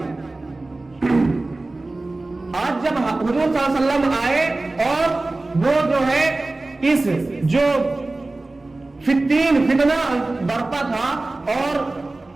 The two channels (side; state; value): left; quieter; 3.1 dB